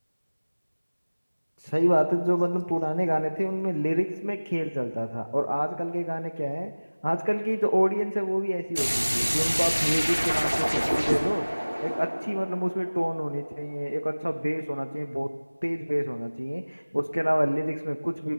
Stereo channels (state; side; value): inverted; both; correlation -1.00